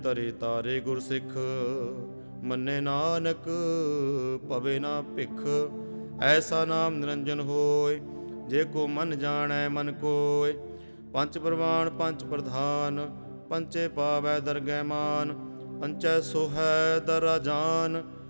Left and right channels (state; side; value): inverted; both; correlation -1.00